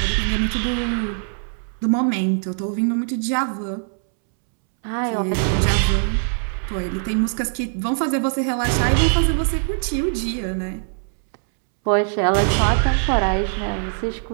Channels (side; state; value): left; silent; 65 dB below the other